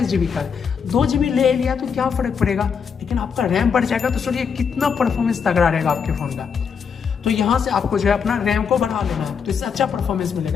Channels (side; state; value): right; quieter; 6.5 dB